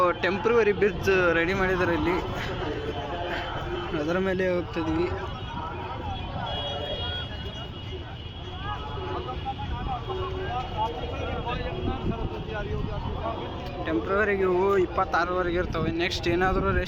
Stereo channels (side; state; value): both; identical; correlation 1.00